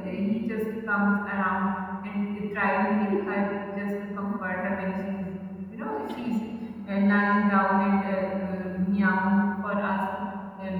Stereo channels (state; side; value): identical; both; correlation 1.00